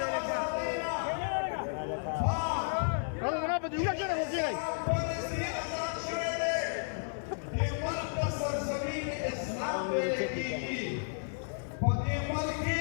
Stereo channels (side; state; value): right; silent; digital silence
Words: Kalau kenapa juga kena kira.